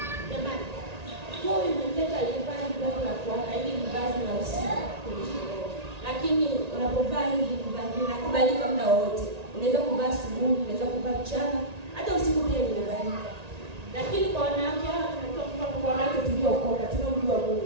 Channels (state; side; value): late; left; 1.8 ms